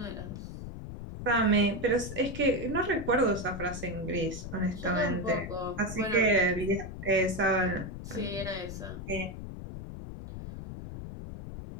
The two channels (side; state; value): left; noise; rumble, 9 dB below the sound